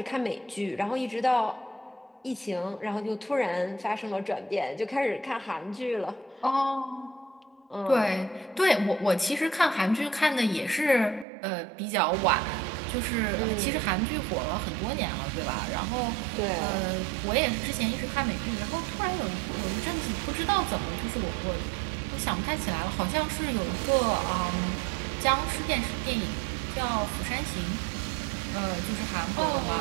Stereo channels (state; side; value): drops out; left; at 11.2 s